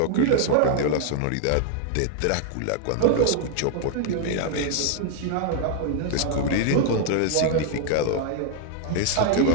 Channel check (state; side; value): different; both; correlation 0.00